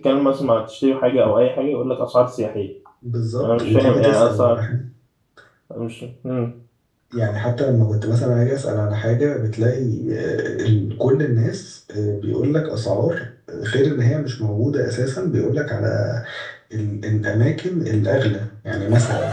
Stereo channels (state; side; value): identical; both; correlation 1.00